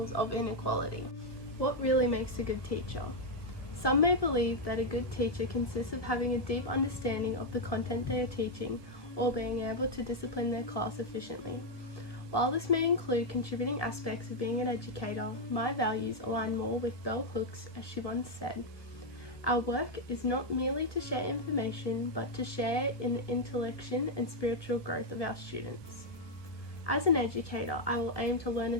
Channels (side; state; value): right; late; 1.4 ms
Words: of inequality. What really makes a good teacher? Some may believe that a good teacher consists of having a deep understanding of the content they are teaching or being able to discipline their class efficiently. While this may include contributing aspects of being an educator, my values align more with Bell Hooks, as she once said, "Our work is not merely to share information, but to share in the intellection and spiritual growth of our students." As an educator, I will aim to learn